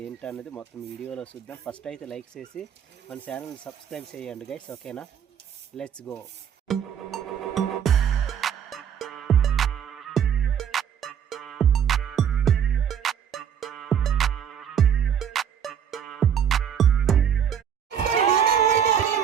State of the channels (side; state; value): left; quieter; 8.4 dB